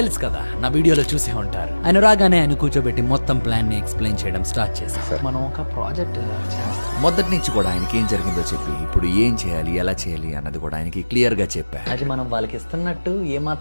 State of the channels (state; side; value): inverted; both; correlation -1.00